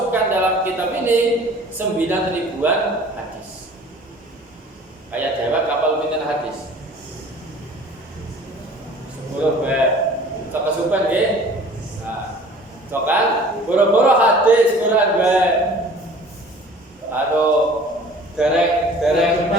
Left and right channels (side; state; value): both; normal; correlation 0.48